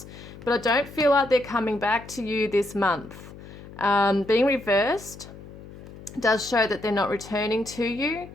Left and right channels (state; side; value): noise; left; hum, 16 dB below the sound